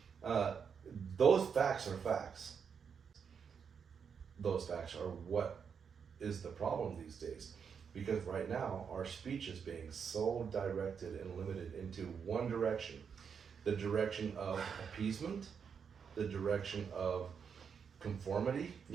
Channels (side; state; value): left; quieter; 6.7 dB